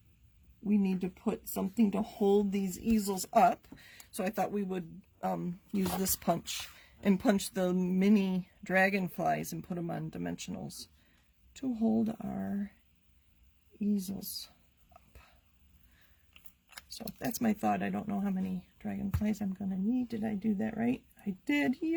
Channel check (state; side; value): identical; both; correlation 1.00